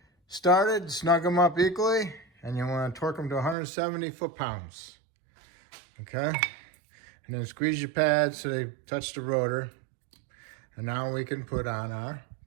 started, snug them up equally, and you want to torque them to 170 foot-pounds. Okay? And then squeeze your pads so they touch the rotor. And now we can put on our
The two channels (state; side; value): drops out; left; at 3.6 s